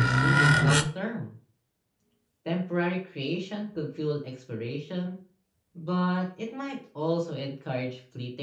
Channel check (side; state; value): both; identical; correlation 1.00